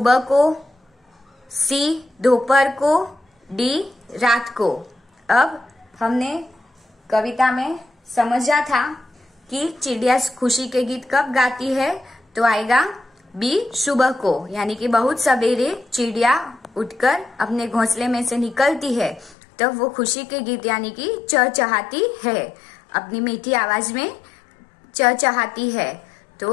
को, सी दोपहर को, डी रात को। अब हमने कविता में समझा था कि चिड़िया खुशी के गीत कब गाती है, तो आएगा बी सुबह को, यानी कि बहुत सवेरे चिड़िया उठकर अपने घोंसले में से निकलती है, तब वो खुशी के गीत यानी कि चहचहाती है, अपनी मीठी आवाज में चहचहाती है।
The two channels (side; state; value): right; drops out; at 19.4 s